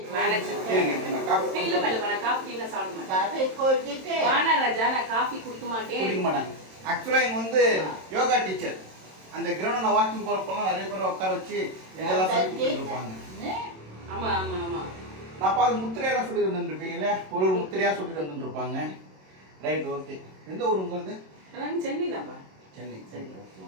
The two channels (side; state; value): left; late; 27 ms